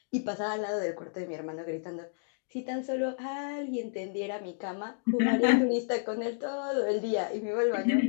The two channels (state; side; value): silent; right; digital silence